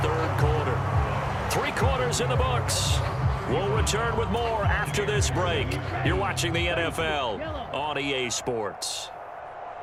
quarter. 3 quarters in the books. We'll return with more after this break. You're watching the NFL on EA Sports.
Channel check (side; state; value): both; identical; correlation 1.00